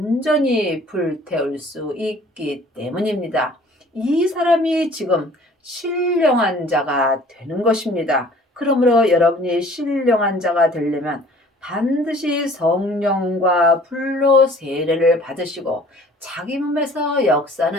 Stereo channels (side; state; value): both; normal; correlation 0.51